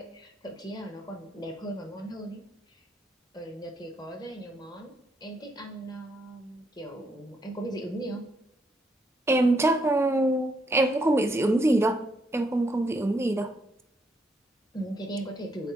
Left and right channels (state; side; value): normal; both; correlation 0.76